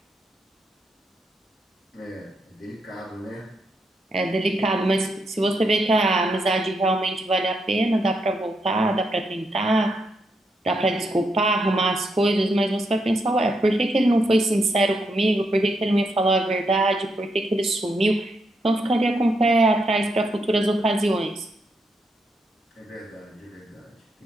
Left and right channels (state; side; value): normal; both; correlation 0.80